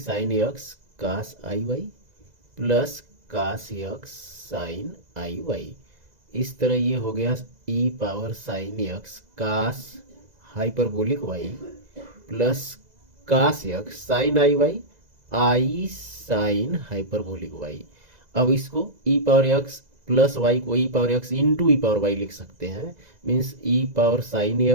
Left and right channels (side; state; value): left; late; 2.0 ms